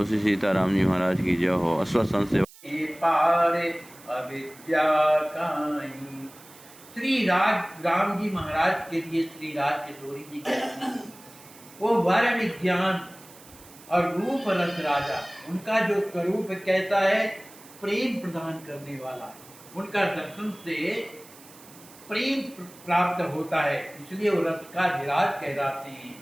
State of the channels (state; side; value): noise; right; hiss, 22 dB below the sound